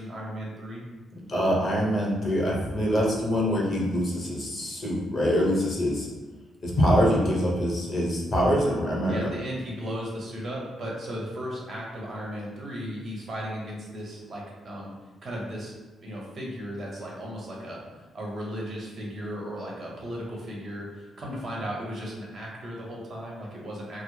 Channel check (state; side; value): normal; both; correlation 0.78